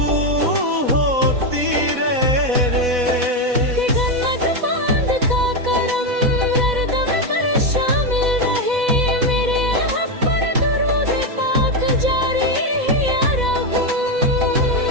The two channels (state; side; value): late; left; 4.1 ms